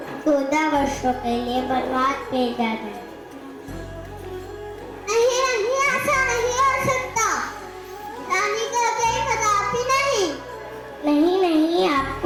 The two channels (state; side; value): identical; both; correlation 1.00